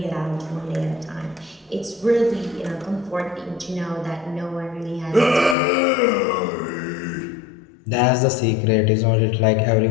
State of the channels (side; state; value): right; drops out; at 5.6 s